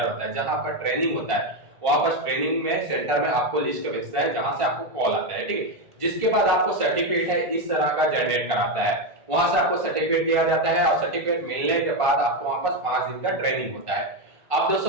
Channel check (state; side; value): late; left; 1.5 ms